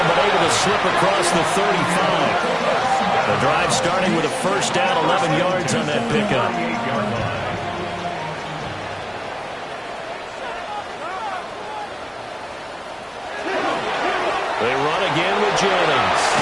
but able to slip across the 35. The drive starting with a 1st down, 11 yards on that pickup. They run again with Jennings.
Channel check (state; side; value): identical; both; correlation 1.00